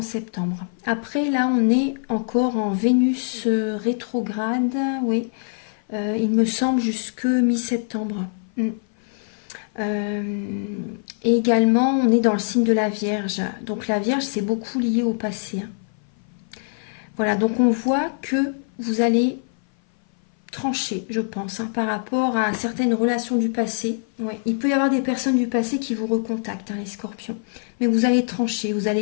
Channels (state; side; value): silent; right; 57 dB below the other